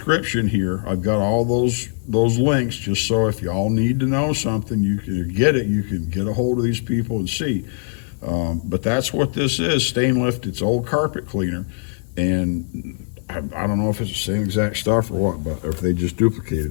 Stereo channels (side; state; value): right; silent; 65 dB below the other